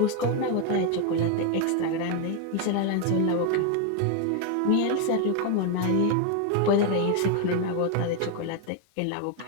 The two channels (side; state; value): both; different; correlation 0.01